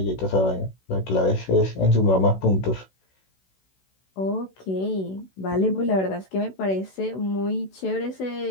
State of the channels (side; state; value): right; late; 16 ms